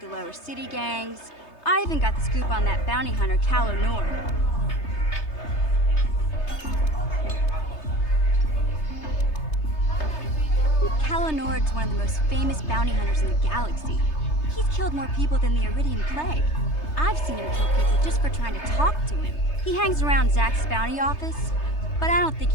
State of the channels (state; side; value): late; right; 3.3 ms